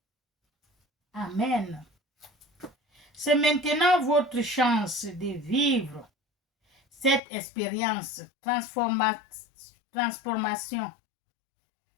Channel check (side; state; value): right; drops out; at 7.2 s